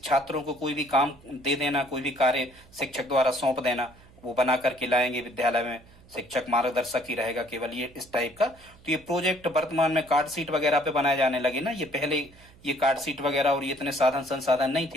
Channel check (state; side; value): noise; right; hum, 25 dB below the sound